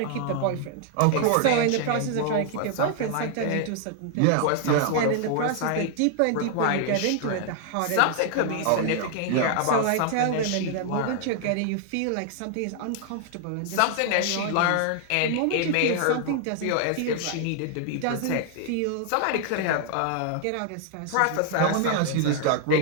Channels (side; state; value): both; different; correlation 0.00